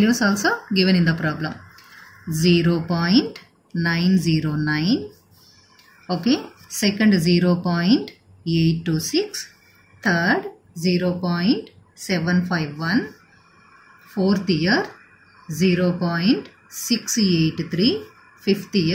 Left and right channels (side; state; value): both; identical; correlation 1.00